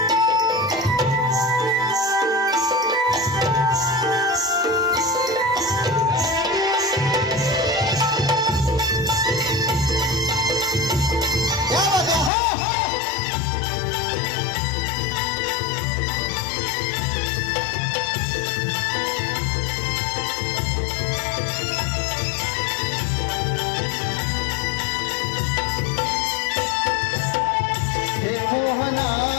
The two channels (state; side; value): drops out; right; at 12.3 s